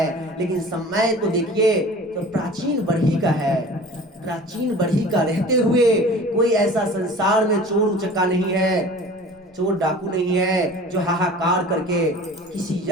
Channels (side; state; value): both; normal; correlation 0.43